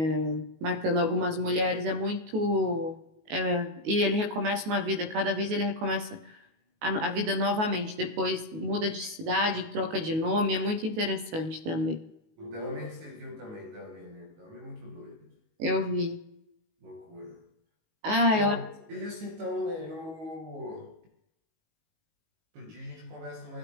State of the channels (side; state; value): left; late; 19 ms